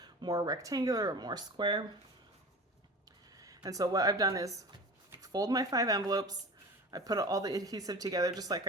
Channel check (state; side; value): normal; both; correlation 0.36